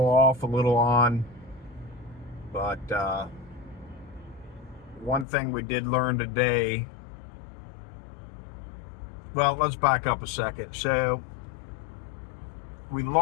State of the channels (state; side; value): drops out; right; at 5.2 s